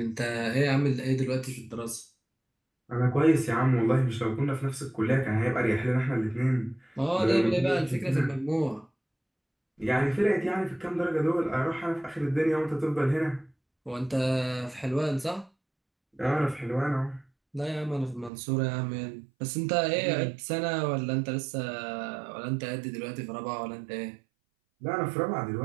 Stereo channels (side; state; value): left; drops out; at 18.3 s